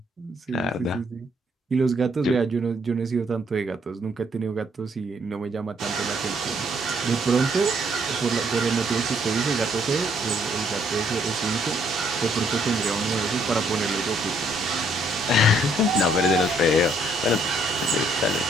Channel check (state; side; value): normal; both; correlation 0.68